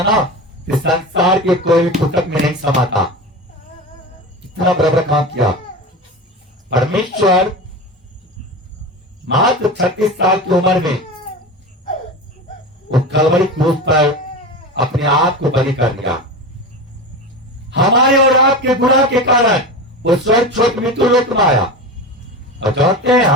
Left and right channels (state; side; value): normal; both; correlation 0.25